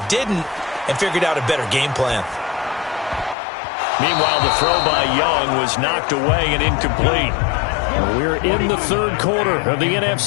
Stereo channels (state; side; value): drops out; right; at 3.4 s